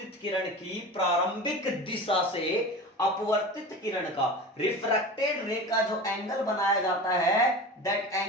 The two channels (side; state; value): both; normal; correlation 0.32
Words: किरण की प्रारंभिक दिशा से अपवर्तित किरण का, रिफ्रैक्टेड रे का जो एंगल बनाया जाता है, that